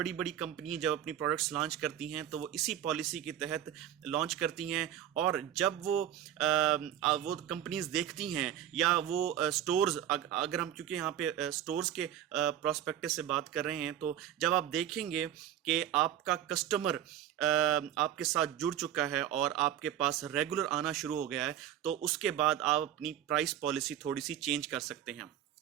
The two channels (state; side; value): quieter; left; 10.9 dB